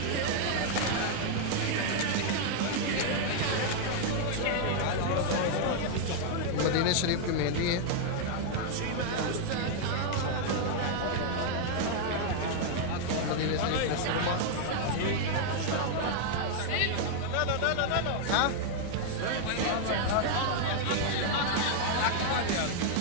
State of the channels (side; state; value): both; different; correlation 0.00